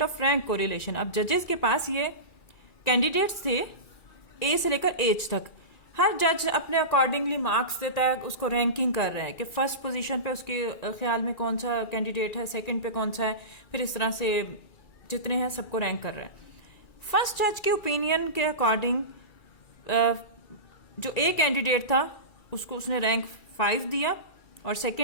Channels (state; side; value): late; right; 2.3 ms